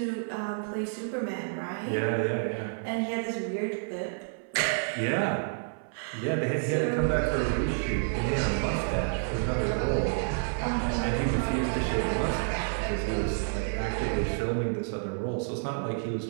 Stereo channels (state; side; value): silent; left; 58 dB below the other